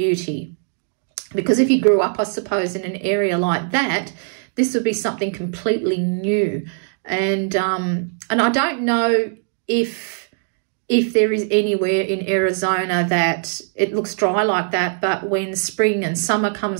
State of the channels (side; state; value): left; silent; digital silence